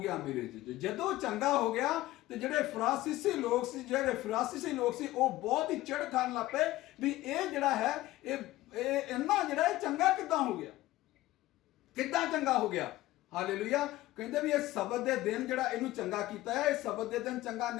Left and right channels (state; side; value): quieter; right; 16.9 dB